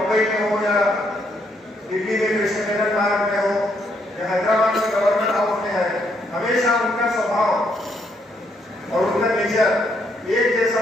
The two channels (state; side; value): normal; both; correlation 0.73